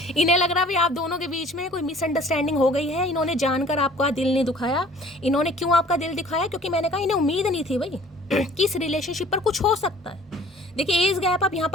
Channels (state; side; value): normal; both; correlation 0.51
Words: इन्हें लग रहा है आप दोनों के बीच में कोई मिसअंडरस्टैंडिंग हो गई है, इन्होंने जानकर आपका दिल नहीं दुखाया। इन्होंने क्यों आपका दिल दिखाया? क्योंकि मैंने कहा इन्हें उम्मीद नहीं थी भाई कि इस रिलेशनशिप पर कुछ हो सकता है। देखिए एज गैप, आप यहाँ